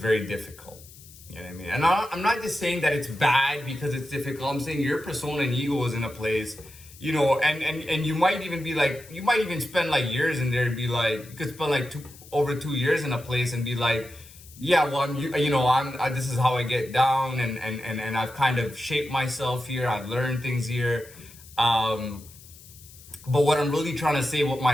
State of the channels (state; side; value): noise; left; hiss, 21 dB below the sound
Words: difficult. You know what I mean? And I'm not just saying that it's bad because it's difficult. I'm saying your persona and ego is in a place, and you might even be like, you might even spend like years in there and be like, you could spend like over 2 years in a place and be like, yeah, well, this is how I get down, and I've kind of shaped myself here. I've learned things here. But what I'm really trying to say, what